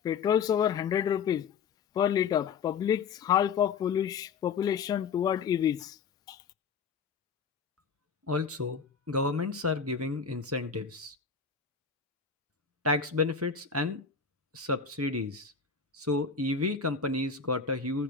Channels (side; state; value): right; quieter; 5.8 dB